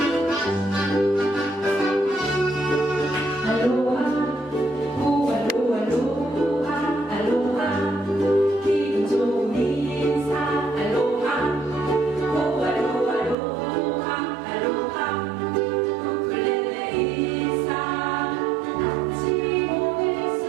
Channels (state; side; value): drops out; left; at 13.4 s